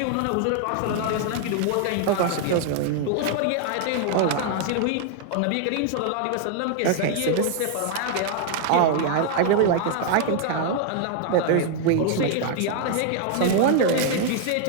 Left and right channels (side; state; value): both; different; correlation 0.00